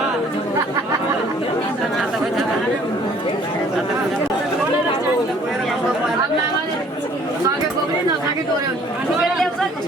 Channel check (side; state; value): both; normal; correlation 0.57